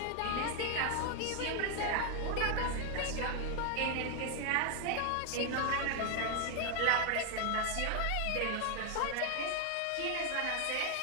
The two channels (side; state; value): both; different; correlation 0.00